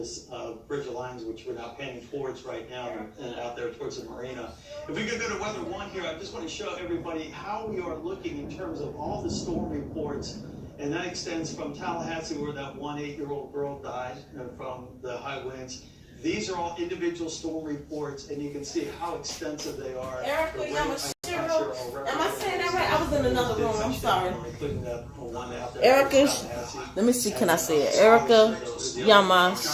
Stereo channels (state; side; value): identical; both; correlation 1.00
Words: Bridge Alliance, which we're now painting towards right now, and out there towards the marina. If we could go to weather one here, I just want to show everybody how we are looking in terms of all the storm reports, and that extends from Tallahassee, where that 1 8-year-old girl died from the high winds. These are all individual storm reports, and you can see how extensive they are. Erica Yamashiro, am I saying that right? I was in another room, I'm sorry. Erica, let me see, can I say it? Erica